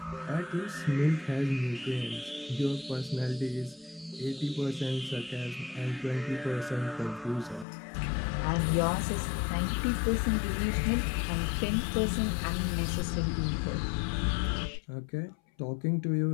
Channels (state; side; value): drops out; right; at 7.7 s